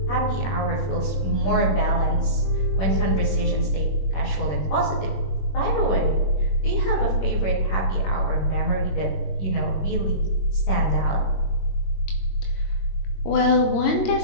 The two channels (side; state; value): right; late; 21 ms